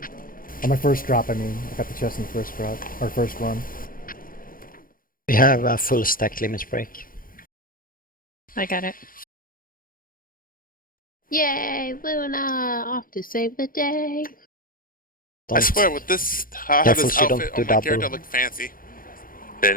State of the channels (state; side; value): late; right; 0.41 ms